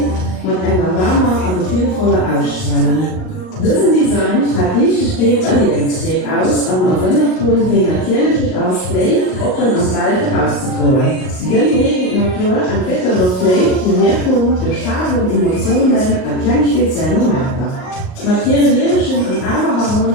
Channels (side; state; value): right; late; 38 ms